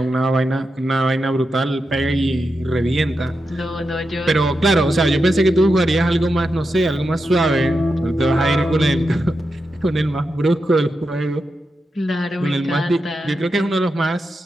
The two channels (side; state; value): both; normal; correlation 0.88